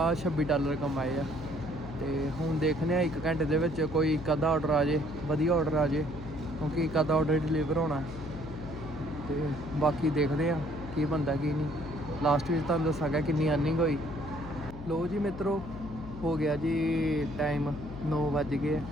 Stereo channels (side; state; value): left; noise; hum, 12 dB below the sound